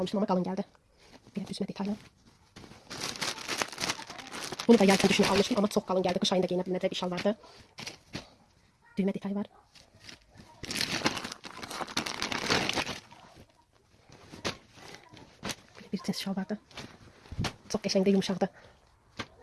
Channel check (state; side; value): identical; both; correlation 1.00